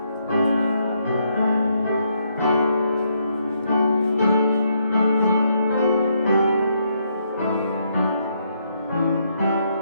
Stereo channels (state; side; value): inverted; both; correlation -0.75